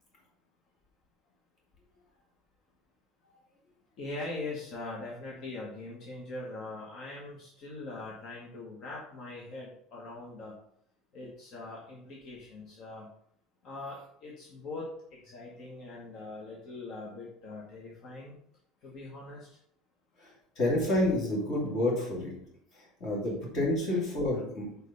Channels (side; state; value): both; normal; correlation 0.43